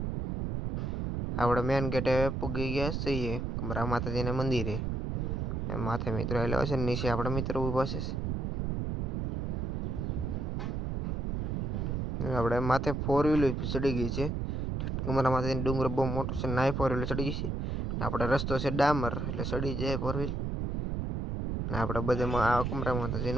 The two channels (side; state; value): right; noise; rumble, 1 dB below the sound